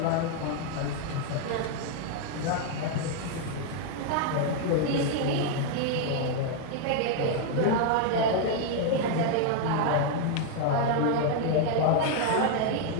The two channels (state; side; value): different; both; correlation 0.00